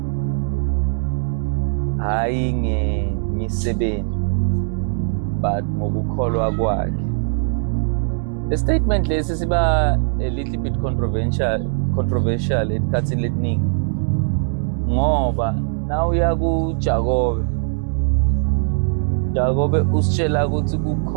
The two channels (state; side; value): silent; left; 66 dB below the other